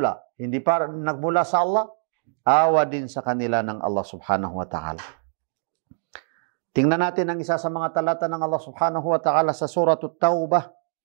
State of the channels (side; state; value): left; silent; digital silence